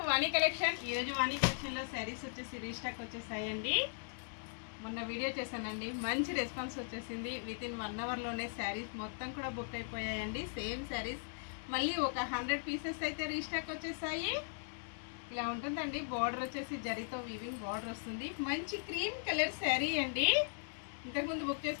Vani collection. ఈరోజు వాణి కలెక్షన్లో శారీస్ వచ్చేసి రీస్టాక్ వచ్చేసాయండి. మొన్న వీడియో చేశానండి, మంచి రెస్పాన్స్ వచ్చేసింది. విత్ ఇన్ 1 అవర్లోనే శారీస్ మొత్తం కూడా బుక్ అయిపోయాయండి. సేమ్ శారీస్ మళ్ళీ ఒక 100 పీసెస్ అయితే రీస్టాక్ వచ్చేసాయి. ఇలా ఉంటుందండి. బార్డర్ వచ్చేసి జరీతో వీవింగ్ బార్డర్ వస్తుంది. మంచి క్రీమ్ కలర్ శారీ అండి. ఇంతకుముందు బుక్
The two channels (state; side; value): silent; right; digital silence